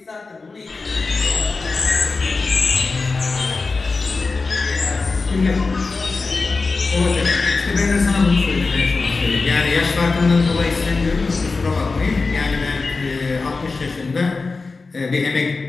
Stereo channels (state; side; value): quieter; right; 4.0 dB